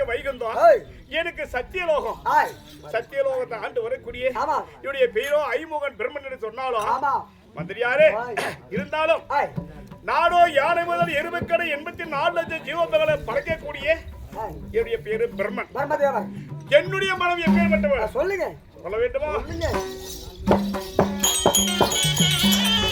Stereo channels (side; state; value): both; identical; correlation 1.00